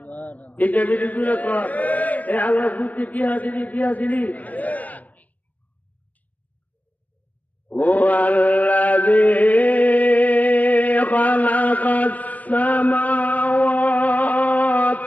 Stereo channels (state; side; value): late; right; 0.075 ms